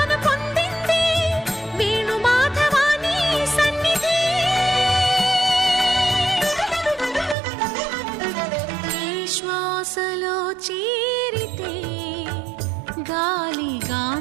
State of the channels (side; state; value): left; drops out; at 7.4 s